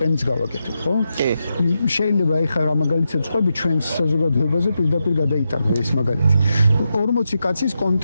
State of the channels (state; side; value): inverted; both; correlation -0.87